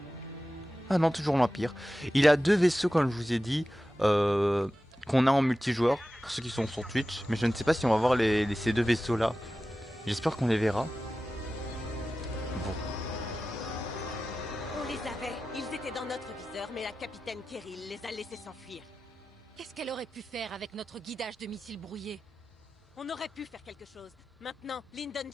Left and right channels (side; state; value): both; normal; correlation 0.94